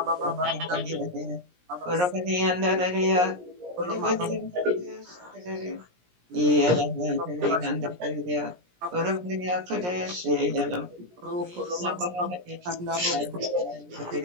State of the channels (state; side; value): late; left; 17 ms